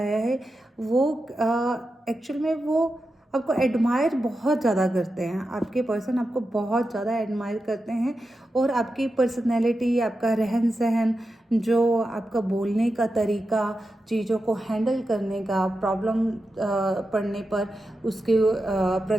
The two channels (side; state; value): both; normal; correlation 0.90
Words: है। वो एक्चुअल में वो आपको एडमायर बहुत ज़्यादा करते हैं, आपके पर्सन आपको बहुत ज़्यादा एडमायर करते हैं। और आपकी पर्सनैलिटी, आपका रहन सहन, जो आपका बोलने का तरीका, चीज़ों को हैंडल करने का, प्रॉब्लम पड़ने पर उसके